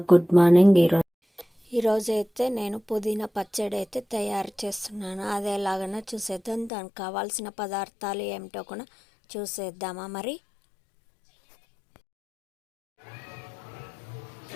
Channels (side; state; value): right; drops out; at 6.7 s